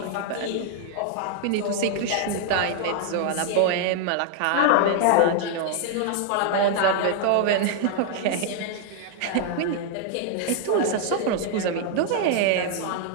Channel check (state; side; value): different; both; correlation 0.00